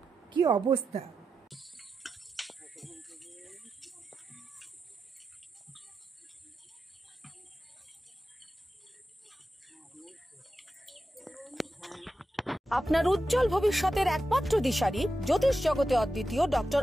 কি অবস্থা। আপনার উজ্জ্বল ভবিষ্যতের একমাত্র দিশারি, জ্যোতিষ জগতে অদ্বিতীয় ডক্টর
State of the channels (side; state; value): both; normal; correlation 0.90